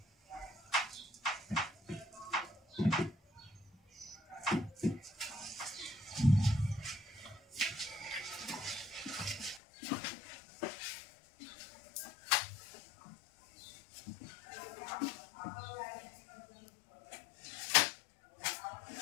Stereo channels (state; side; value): drops out; right; at 9.6 s